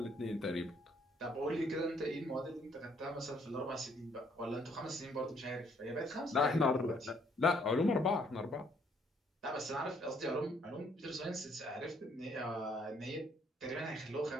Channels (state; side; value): normal; both; correlation 0.66